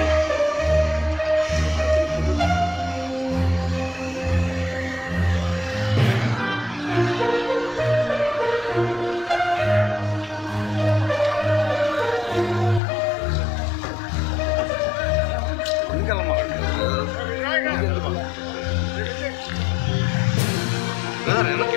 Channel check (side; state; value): right; drops out; at 12.8 s